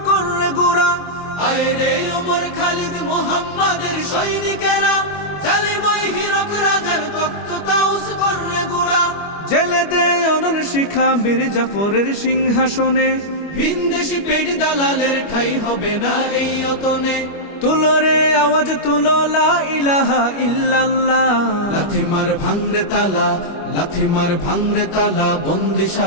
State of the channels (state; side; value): late; right; 25 ms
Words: করে গোরা। আয় রে উমর খালিদ মুহাম্মাদের সৈনিকেরা, জালিমাই হিরক রাজার তখ্ত তাউস করে গোরা। জেলে দে অনল শিখা বীর জাফরের সিংহাসনে, ভিনদেশি পেট দালালের ঠাই হবে না এই অতনে। তুলো রে আওয়াজ তুলো লা ইলাহা ইল্লাল্লাহ। লাথি মার ভাঙরে তালা, লাথি মার ভাঙরে তালা,